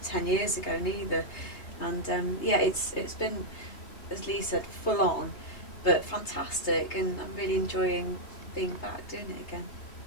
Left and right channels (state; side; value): late; right; 3.3 ms